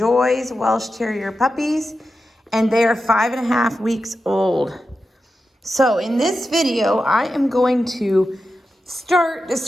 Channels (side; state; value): both; normal; correlation 0.90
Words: Welsh Terrier puppies, and they are 5.5 weeks old. So in this video, I am going to start